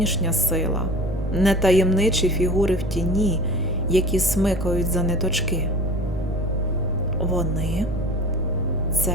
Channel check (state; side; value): noise; right; rumble, 12 dB below the sound